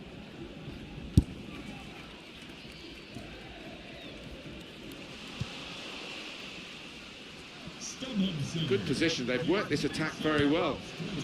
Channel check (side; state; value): both; identical; correlation 1.00